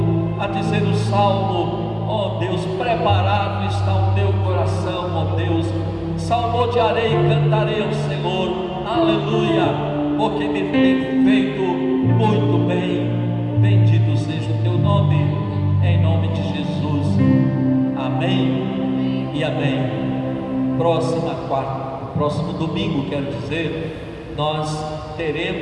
a dizer o salmo, ó Deus, preparado está o teu coração, ó Deus, salmodiarei e cantarei ao Senhor, aleluia, porque me tem feito muito bem. Bendito seja o teu nome, em nome de Jesus. Amém e amém. Próximo domingo, quero dizer, nós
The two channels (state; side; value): identical; both; correlation 1.00